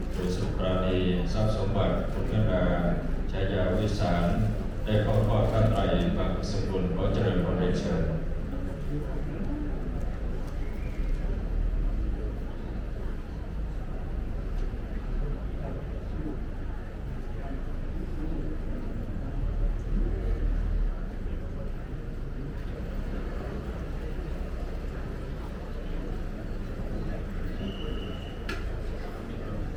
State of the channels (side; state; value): both; identical; correlation 1.00